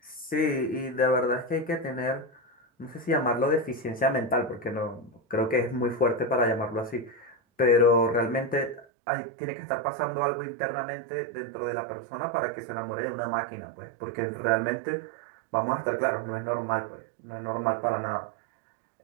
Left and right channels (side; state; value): left; drops out; at 8.8 s